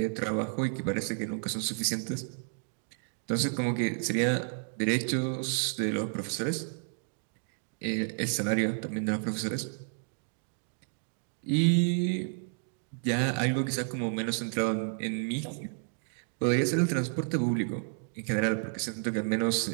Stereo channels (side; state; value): left; silent; digital silence